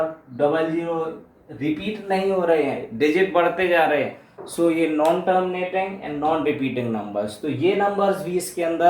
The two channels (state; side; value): identical; both; correlation 1.00